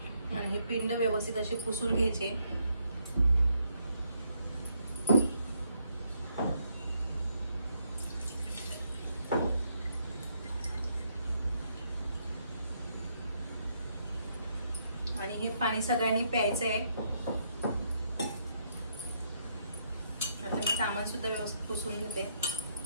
आणि हे पिंड व्यवस्थित असे पुसून घ्यायचे। आणि हे पाणी सगळ्यांनी प्यायचंय। आता मी सामान सुद्धा व्यवस्थित पुसून घेते।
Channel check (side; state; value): both; inverted; correlation -0.75